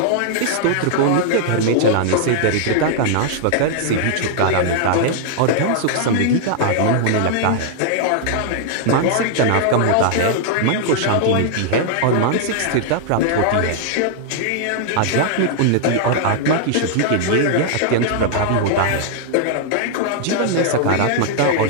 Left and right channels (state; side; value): different; both; correlation -0.01